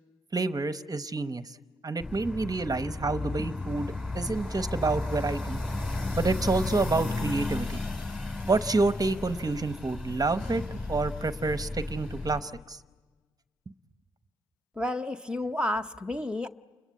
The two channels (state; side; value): normal; both; correlation 0.78